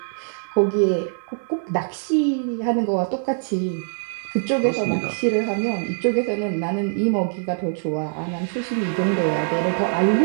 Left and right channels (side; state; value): left; silent; digital silence